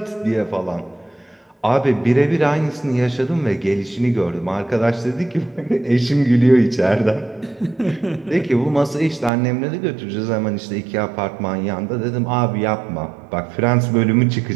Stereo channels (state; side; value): drops out; left; at 9.3 s